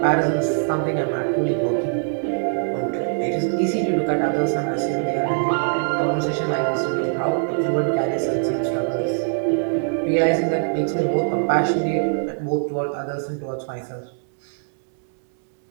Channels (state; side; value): silent; left; digital silence